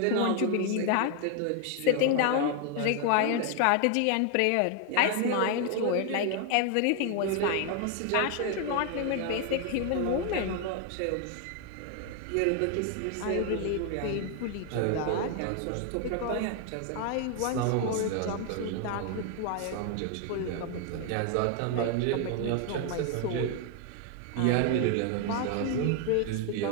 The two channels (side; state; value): both; different; correlation 0.00